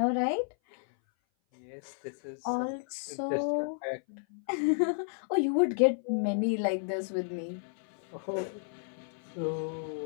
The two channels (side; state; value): right; silent; 56 dB below the other